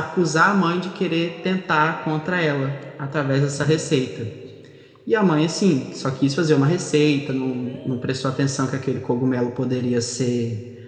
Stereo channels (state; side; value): identical; both; correlation 1.00